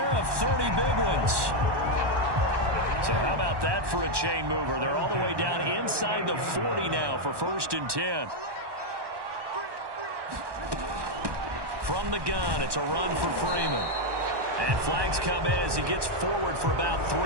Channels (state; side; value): late; left; 1.2 ms